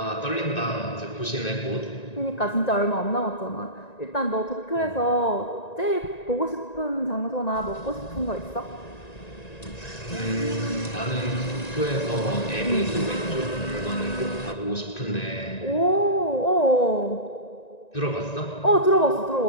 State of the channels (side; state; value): right; late; 1.9 ms